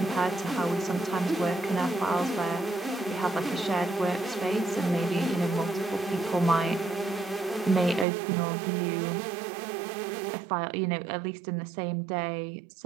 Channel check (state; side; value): drops out; left; at 8.1 s